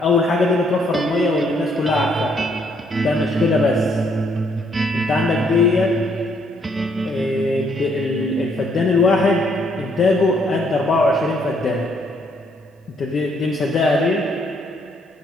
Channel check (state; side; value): normal; both; correlation 0.69